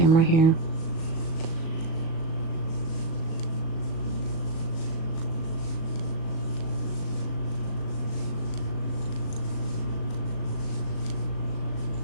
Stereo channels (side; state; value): right; late; 37 ms